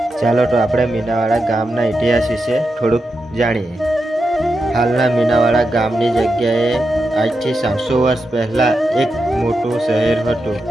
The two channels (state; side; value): normal; both; correlation 0.87